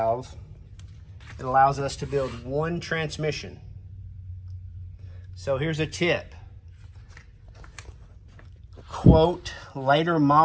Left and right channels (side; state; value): both; identical; correlation 1.00